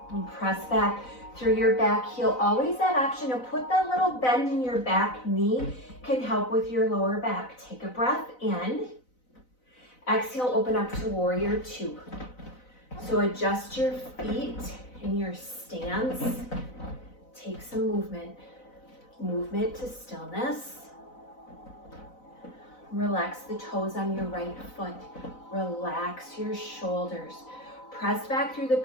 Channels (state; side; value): late; right; 4.0 ms